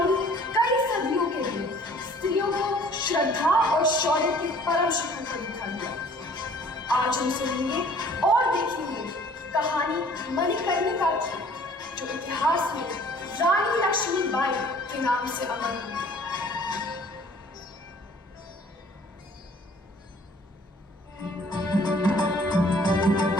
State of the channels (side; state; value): both; normal; correlation 0.54